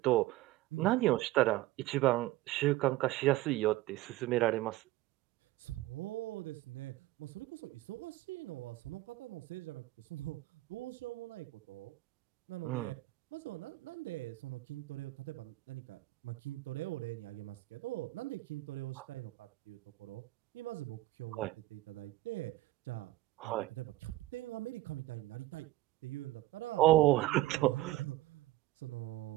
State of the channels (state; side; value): quieter; left; 17.6 dB